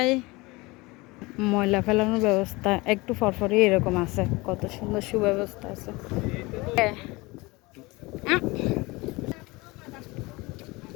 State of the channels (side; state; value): right; quieter; 23.3 dB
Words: ময়লা ফেলানোর ব্যবস্থা একটু ফরফরি এরকম আছে, কত সুন্দর সুব্যবস্থা আছে।